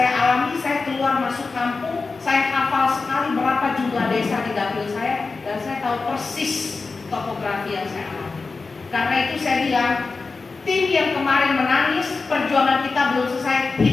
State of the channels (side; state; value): right; quieter; 4.1 dB